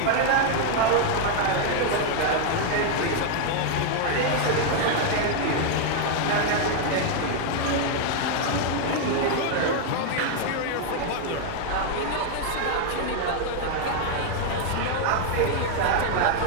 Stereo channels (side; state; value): both; different; correlation 0.00